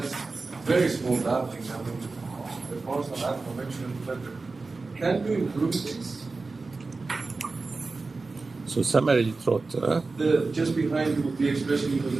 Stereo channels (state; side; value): quieter; left; 3.8 dB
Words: very small damping, I mean, the constant and conventional better, can you improve this? So semi-rigid trotter. Just behind you would be expressing in